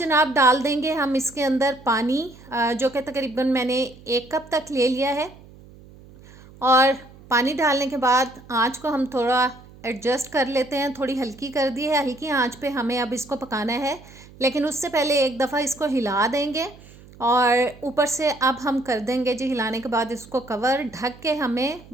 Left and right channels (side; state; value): right; noise; hum, 22 dB below the sound